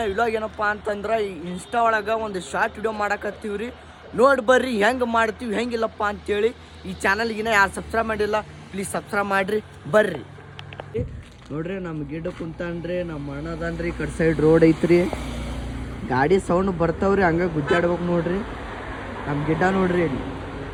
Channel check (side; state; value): both; identical; correlation 1.00